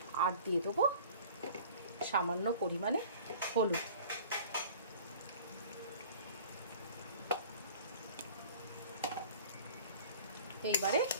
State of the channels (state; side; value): inverted; both; correlation -0.46